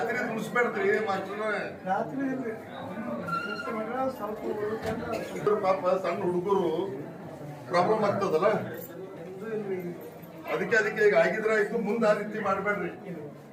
ಮುಗಿಸ್ಬೇಡ್ತೀರಿ ಮಾಸ್ಟರ್. ಪಾಪ ಸಣ್ಣ ಹುಡುಗರು ಪ್ರಾಬ್ಲಮ್ ಆಗ್ತದಲ್ಲ, ಅದಕ್ಕೆ ಈಗ ಆಗಿದ್ರೆ ಆಯ್ತು. ಮುಂದೆ ಆ ರೀತಿ ಮಾಡ್ಬೇಡ್ರಿ.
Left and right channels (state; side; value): identical; both; correlation 1.00